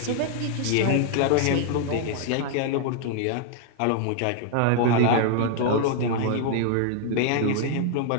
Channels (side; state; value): both; different; correlation 0.00